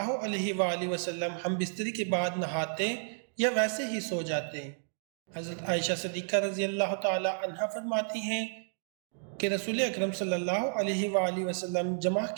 علیہ وآلہ وسلم ہم بستری کے بعد نہاتے یا ویسے ہی سو جاتے؟ حضرت عائشہ صدیقہ رضی اللہ تعالی عنہا فرماتی ہیں کہ رسول اکرم صلی اللہ علیہ وآلہ وسلم جمعہ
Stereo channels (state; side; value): silent; left; digital silence